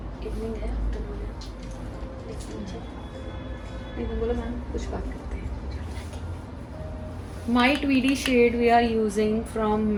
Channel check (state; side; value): identical; both; correlation 1.00